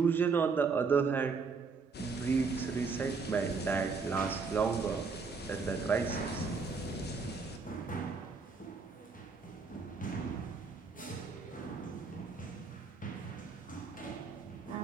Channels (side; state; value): left; quieter; 4.8 dB